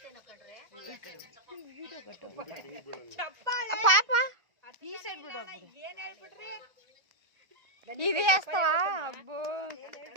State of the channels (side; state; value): left; late; 1.4 ms